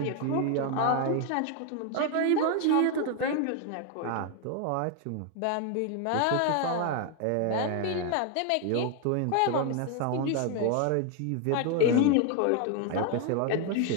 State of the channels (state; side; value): different; both; correlation 0.01